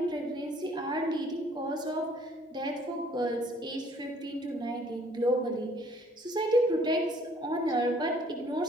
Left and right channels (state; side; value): normal; both; correlation 0.59